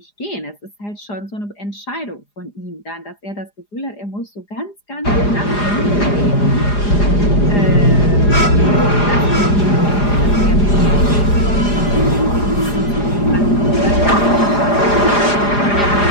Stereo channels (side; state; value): right; late; 4.9 ms